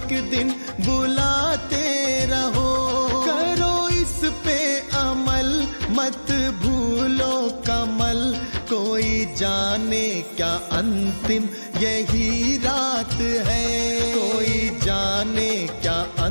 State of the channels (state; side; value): inverted; both; correlation -1.00